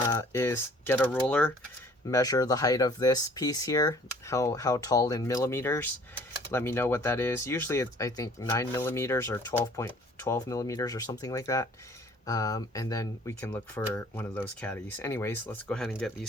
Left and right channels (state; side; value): normal; both; correlation 0.54